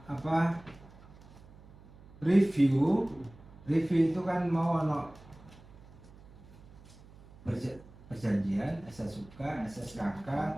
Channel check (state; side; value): noise; right; hum, 22 dB below the sound